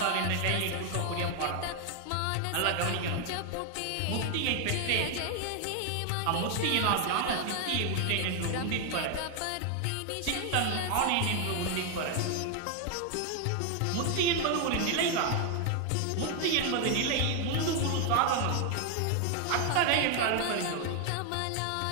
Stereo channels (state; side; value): different; both; correlation 0.01